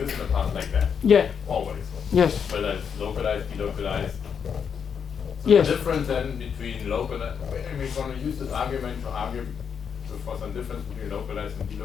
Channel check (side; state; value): right; quieter; 7.1 dB